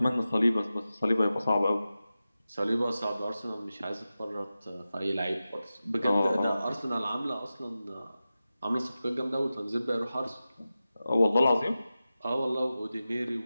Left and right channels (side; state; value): both; inverted; correlation -0.94